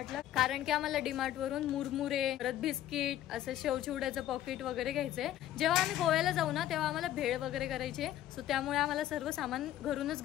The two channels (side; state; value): right; quieter; 12.6 dB